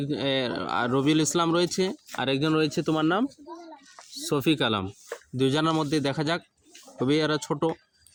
রবিউল ইসলাম রয়েছে, আরেকজন রয়েছে তোমার নাম শফিক আলম। দুইজনের মধ্যে দেখা যাক। তবে এরা ছোট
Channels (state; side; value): identical; both; correlation 1.00